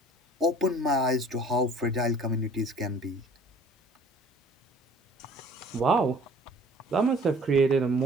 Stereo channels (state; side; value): normal; both; correlation 0.51